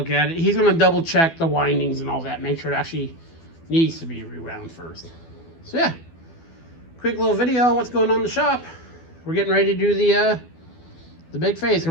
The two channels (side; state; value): right; late; 12 ms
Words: at it. He's going to double check the windings and all that, make sure it actually needs to be rewound first. So yeah, quick little video on what's going on in the shop. We're getting ready to do the big phase